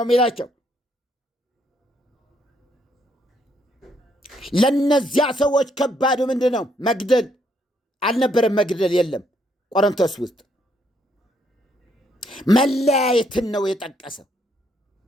የሚላቸው። ለነዚያ ሰዎች ከባዱ ምንድን ነው? መግደል አልነበረም። መግደል የለም ቆሮንቶስ ውስጥ። መለያየትን ነው የጠቀሰው።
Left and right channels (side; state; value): both; normal; correlation 0.72